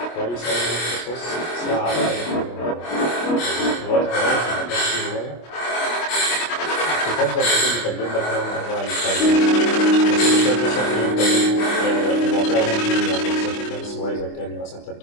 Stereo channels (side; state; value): right; late; 25 ms